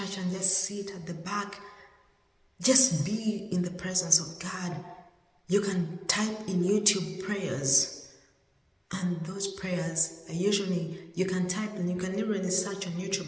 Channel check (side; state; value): both; identical; correlation 1.00